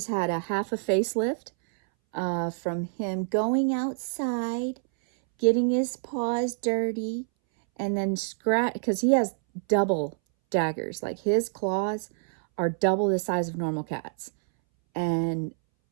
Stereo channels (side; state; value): left; silent; 60 dB below the other